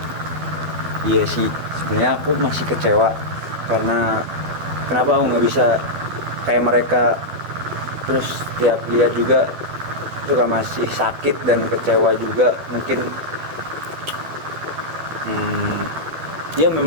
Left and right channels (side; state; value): left; late; 12 ms